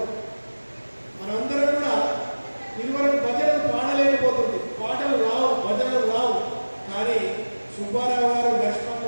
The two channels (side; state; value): both; inverted; correlation -1.00